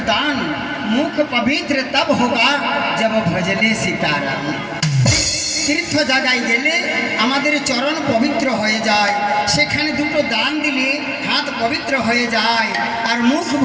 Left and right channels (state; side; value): identical; both; correlation 1.00